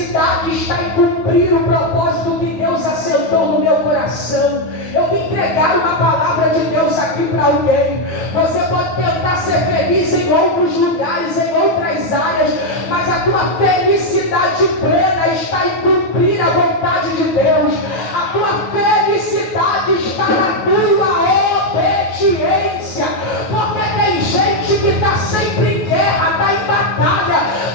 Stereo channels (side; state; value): right; late; 9.3 ms